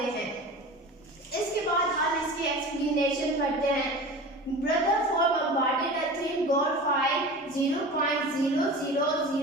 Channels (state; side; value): normal; both; correlation 0.35